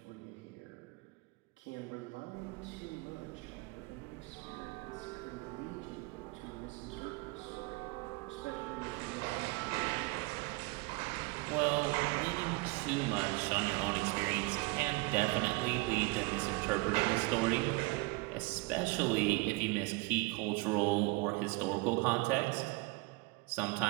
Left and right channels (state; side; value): quieter; left; 25.0 dB